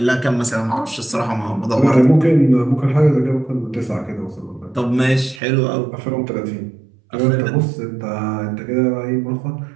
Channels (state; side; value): drops out; left; at 5.4 s